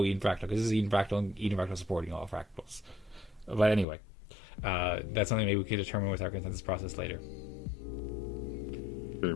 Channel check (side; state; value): right; drops out; at 3.9 s